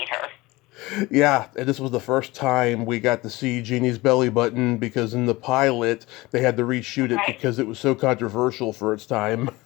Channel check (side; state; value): right; quieter; 21.0 dB